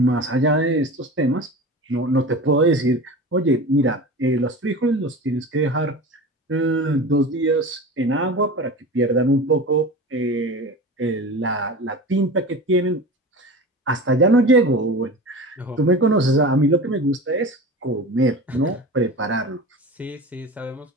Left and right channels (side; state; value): both; normal; correlation 0.32